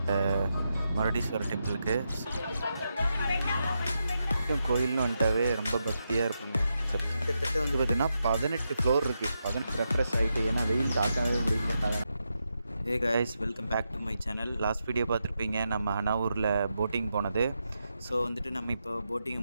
மருடீஸ்வரர் டெம்பிளுக்கு. கோயில்னு வந்துட்டாவே ரொம்ப பக்தியாக இருப்பாங்க. கிட்டத்தட்ட வந்து பார்த்திங்கன்னா 18 ஃப்ளோர் இருக்குது. 18 ரெஃப்ரெஷ் ஆகிட்டு, ஏன்னா வெயில் தாக்கவே முடியல. Hey guys, welcome back to my channel. Last video பார்த்துருப்பீங்க, நம்ம ஹனாவூரில் போட்டிங் போனது. ஸோ வந்துட்டு நம்ம இப்போ போட்டிங்கை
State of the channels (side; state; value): both; inverted; correlation -0.85